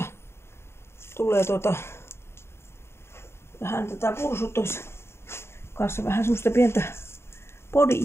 tulee vähän tätä pursutus kanssa vähän semmoista pientä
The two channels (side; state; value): right; late; 0.12 ms